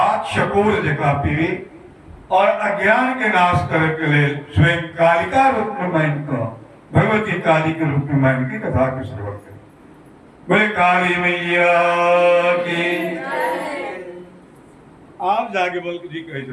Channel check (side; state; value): both; identical; correlation 1.00